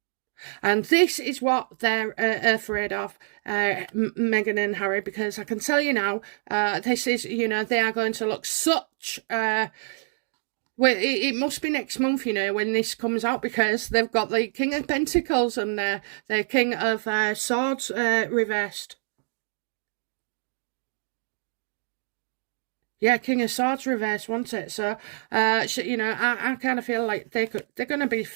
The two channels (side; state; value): left; silent; digital silence